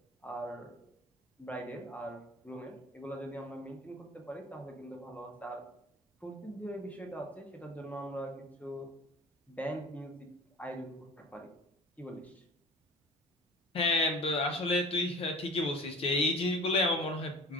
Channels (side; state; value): both; normal; correlation 0.41